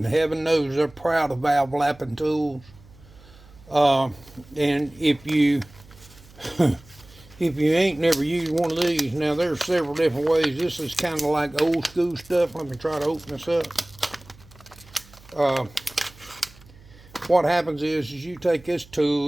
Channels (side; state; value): right; noise; hum, 24 dB below the sound